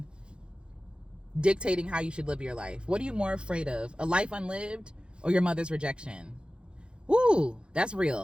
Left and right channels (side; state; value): left; late; 0.054 ms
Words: dictating how you should live your life. What are you more afraid of? A life unlived or your mother's rejection. Woo, that's